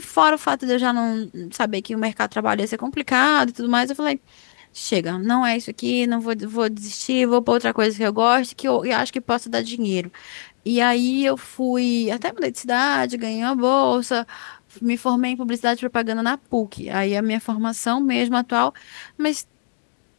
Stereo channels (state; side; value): silent; right; digital silence